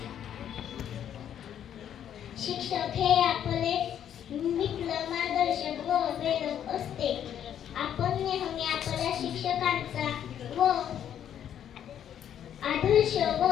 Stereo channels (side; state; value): right; quieter; 9.8 dB